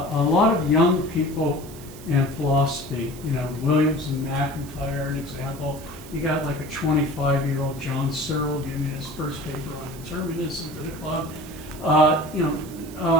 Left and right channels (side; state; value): right; noise; hiss, 19 dB below the sound